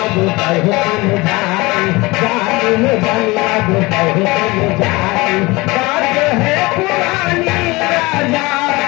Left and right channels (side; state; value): right; quieter; 22.9 dB